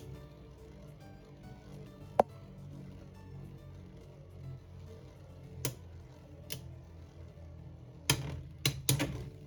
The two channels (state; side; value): identical; both; correlation 1.00